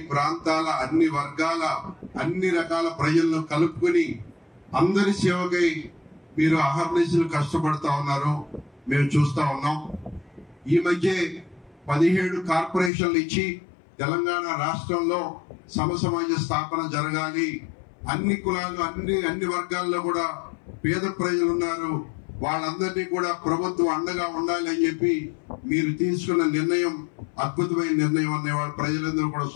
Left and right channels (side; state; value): right; drops out; at 12.9 s